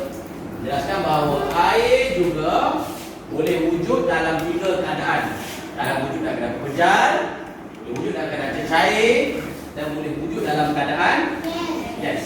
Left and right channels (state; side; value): identical; both; correlation 1.00